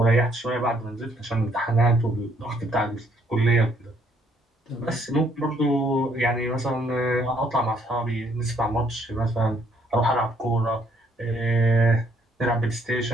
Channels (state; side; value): normal; both; correlation 0.67